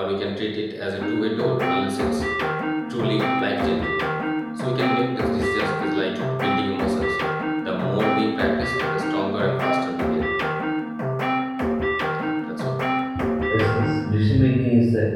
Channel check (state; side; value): identical; both; correlation 1.00